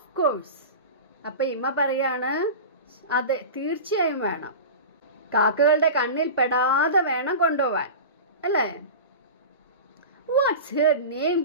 course. അപ്പൊ ഇമ്മ പറയാണ്, അതെ, തീർച്ചയായും വേണം. കാക്കകളുടെ കണ്ണിൽ പെടാതെ വേണം കൊണ്ടുപോവാൻ, അല്ലേ? What's her name?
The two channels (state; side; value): inverted; both; correlation -0.30